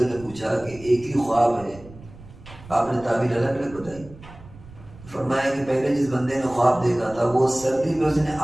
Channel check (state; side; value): noise; right; rumble, 19 dB below the sound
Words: نے پوچھا کہ ایک ہی خواب ہے، آپ نے تعبیر الگ الگ بتائی. فرمایا کہ پہلے جس بندے نے خواب دیکھا تھا وہ سردی میں اس نے